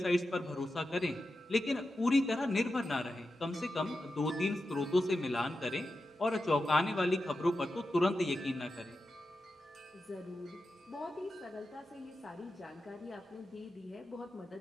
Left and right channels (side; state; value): both; normal; correlation 0.90